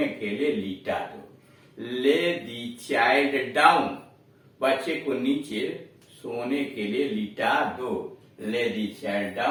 के लिए लिटा दो। ले दी चाइल्ड डाउन, बच्चे को नीचे सोने के लिए लिटा दो। Lay the child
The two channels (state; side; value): identical; both; correlation 1.00